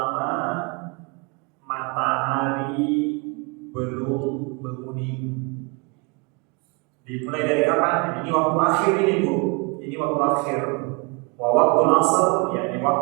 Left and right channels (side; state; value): left; quieter; 31.6 dB